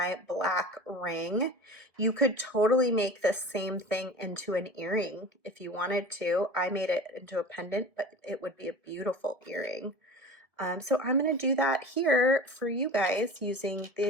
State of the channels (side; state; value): left; late; 1.5 ms